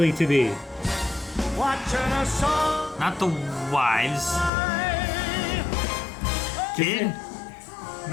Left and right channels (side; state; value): right; drops out; at 4.5 s